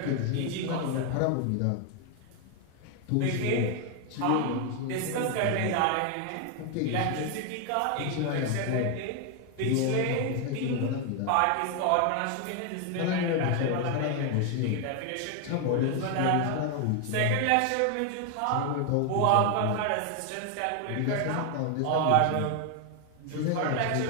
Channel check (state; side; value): different; both; correlation 0.01